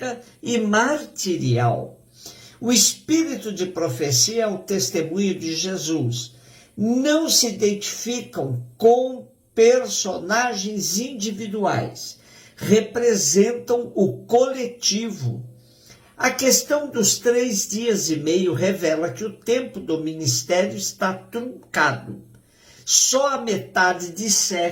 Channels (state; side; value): identical; both; correlation 1.00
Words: e martirial. O espírito de profecia é o testemunho de Jesus. Não se identificam com personagens individuais, representam o coletivo. A questão dos 3 dias e meio revela que o tempo do ministério está truncado. Só a metade de